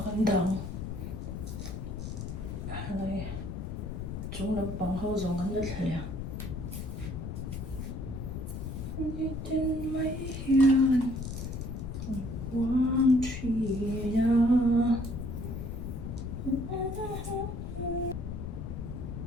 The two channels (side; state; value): left; noise; rumble, 6 dB below the sound